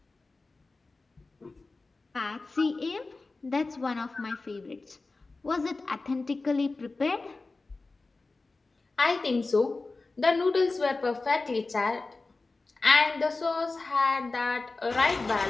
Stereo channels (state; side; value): quieter; right; 3.6 dB